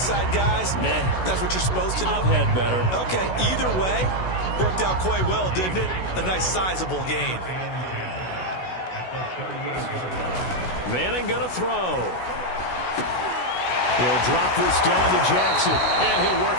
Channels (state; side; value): late; right; 16 ms